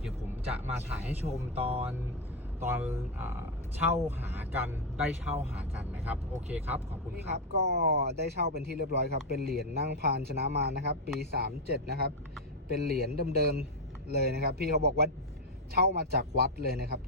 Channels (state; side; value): normal; both; correlation 0.03